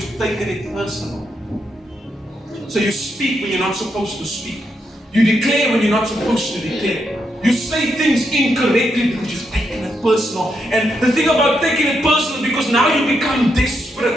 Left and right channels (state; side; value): normal; both; correlation 0.80